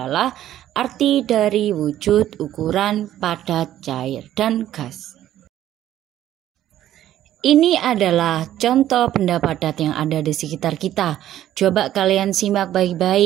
arti dari wujud, ukuran, padat, cair, dan gas. Ini adalah contoh benda padat yang ada di sekitar kita. Coba kalian simak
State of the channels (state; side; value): quieter; left; 12.4 dB